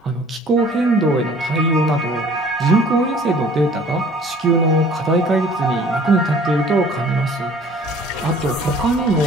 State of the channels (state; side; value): normal; both; correlation 0.52